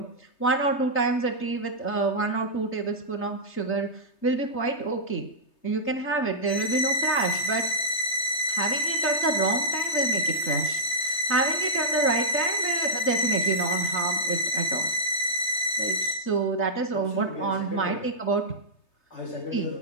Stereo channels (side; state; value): right; late; 3.3 ms